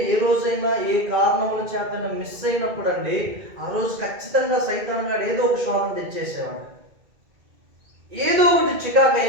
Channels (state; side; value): late; left; 2.3 ms